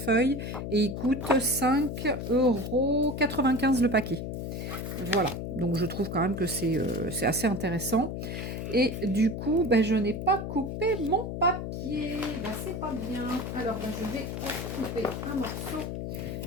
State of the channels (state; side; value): noise; left; hum, 5 dB below the sound